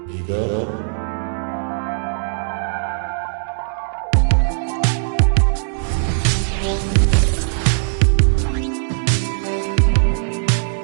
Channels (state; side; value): silent; left; digital silence